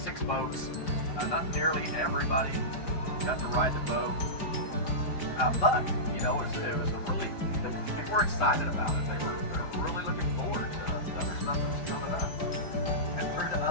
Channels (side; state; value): right; late; 5.0 ms